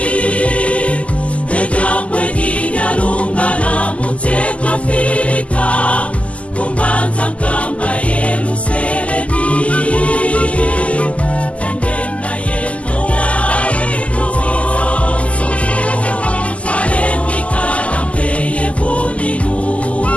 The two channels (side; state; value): right; late; 0.065 ms